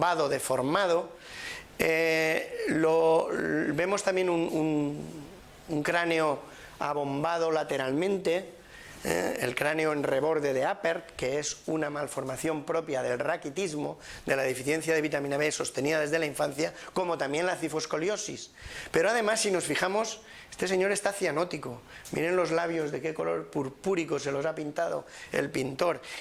deformado, Vemos también un cráneo abombado lateralmente, el cráneo en reborde de Appert, que es una malformación propia del raquitismo, de la deficiencia de vitamina B sostenida desde la infancia, como también la cifoscoliosis. Pero además, si nos fijamos, este señor está cianótico. Miren los labios de qué color purpúrico se los ha pintado el pintor.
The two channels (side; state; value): both; identical; correlation 1.00